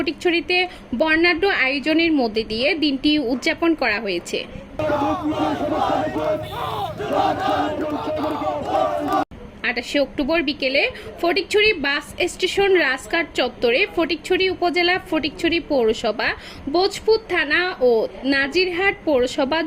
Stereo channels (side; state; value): both; identical; correlation 1.00